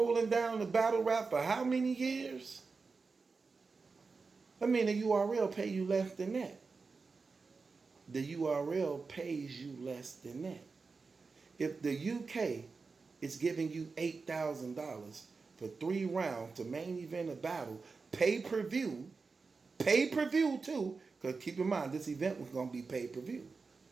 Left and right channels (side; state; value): left; quieter; 4.5 dB